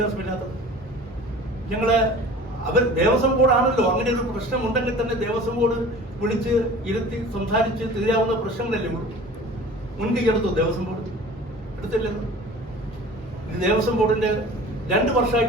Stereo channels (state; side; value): normal; both; correlation 0.42